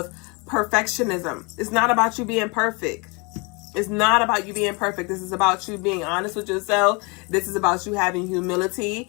perfectionism. It's not about you being perfect. It's not about you being perfect. This is about you being honest with yourself. This is about you having humility.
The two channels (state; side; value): quieter; right; 30.1 dB